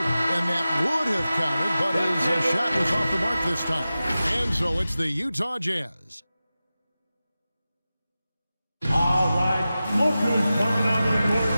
that would have counted, but his shot was off the mark this time. And so it's the Utah Jazz. All right, look who's coming onto the court.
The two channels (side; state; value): both; inverted; correlation -0.94